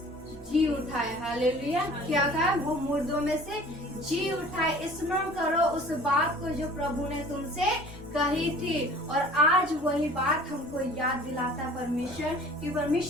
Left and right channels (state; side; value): normal; both; correlation 0.48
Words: जी उठाए। हालेलुया। क्या कहा? वो मुर्दों में से जी उठाए। स्मरण करो उस बात को जो प्रभु ने तुमसे कही थी। और आज वही बात हमको याद दिलाता है परमेश्वर कि